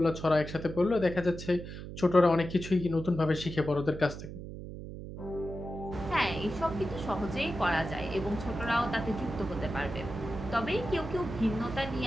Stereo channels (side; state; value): right; noise; hum, 10 dB below the sound